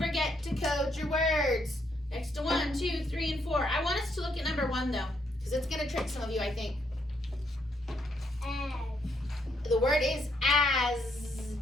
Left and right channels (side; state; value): both; normal; correlation 0.74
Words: to code your words. Next to 1, 2, 3, and 4. I want us to look at number 1, though. Because it's going to trick some of you, I think. The word is as.